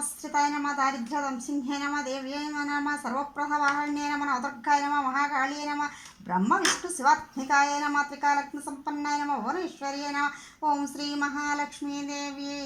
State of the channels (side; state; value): both; identical; correlation 1.00